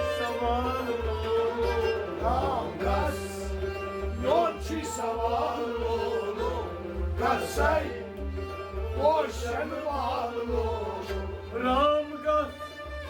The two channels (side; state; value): both; identical; correlation 1.00